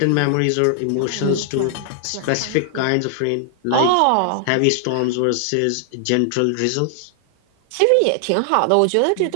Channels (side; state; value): both; different; correlation 0.00